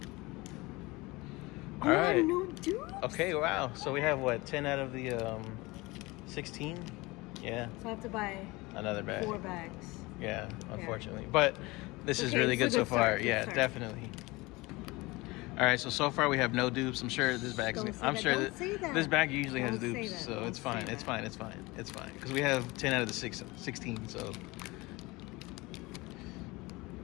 All right. No dupes? Okay, wow. So we have what, 10 out of the 16? Yeah, So I have to buy another bag. 4 bags. Yeah, unfortunately. But this is Okay, really it's a good so good far. start, good Yeah, start. definitely. All right, so far we have no dupes. I'm sure this bag's. Don't say I'm that. sure Don't say that. this bag usually has Don't say dupes, that. so Don't it's fine. say It's that. fine. It's fine. It's fine because we have 10 out of the 16. So.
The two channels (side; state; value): right; quieter; 22.6 dB